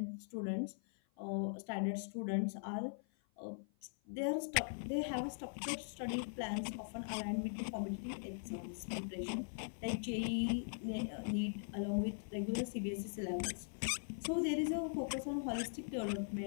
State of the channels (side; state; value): right; silent; 50 dB below the other